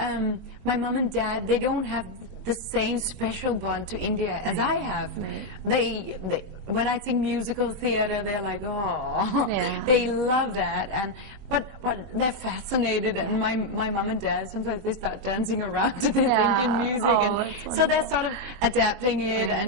my mom and dad, they don't have the same special bond to India as I have. When I sing musical theater, they're like, oh, Yeah. they love that. But they're fascinated, and my mom and dad, sometimes they start dancing around to this Yeah. Indian music, Oh, and that's so they're sort of adapting it,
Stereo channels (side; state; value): left; late; 21 ms